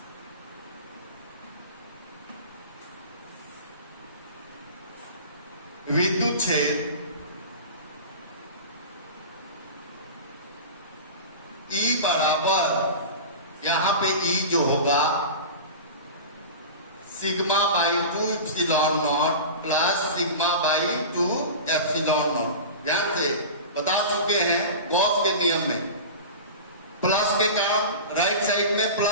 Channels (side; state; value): both; inverted; correlation -0.31